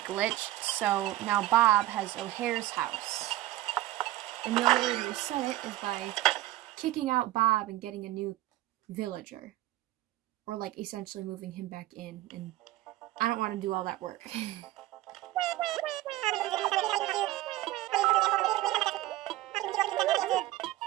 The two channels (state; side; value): quieter; left; 16.2 dB